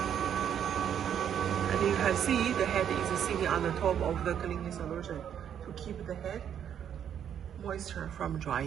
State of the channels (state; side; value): quieter; left; 9.1 dB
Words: You can see the head is sitting on the top of the cleaning solution to keep the head moisture from